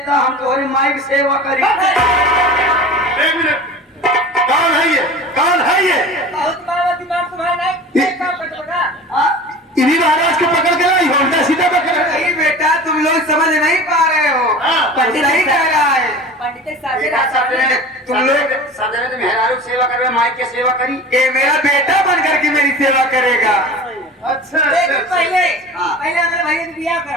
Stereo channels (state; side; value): normal; both; correlation 0.37